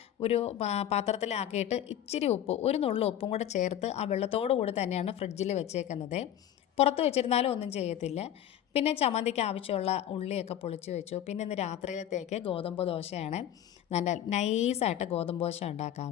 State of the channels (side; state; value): right; quieter; 11.0 dB